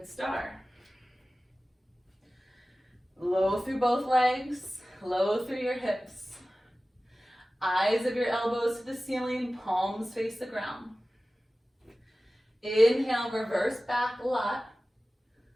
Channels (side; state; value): both; normal; correlation 0.96